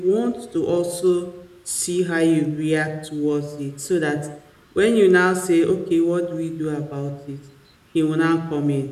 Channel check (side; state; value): both; identical; correlation 1.00